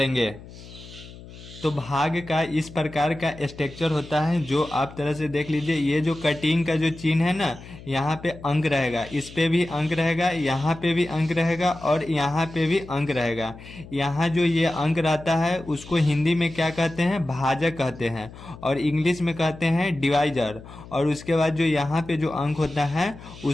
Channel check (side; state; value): left; noise; hum, 17 dB below the sound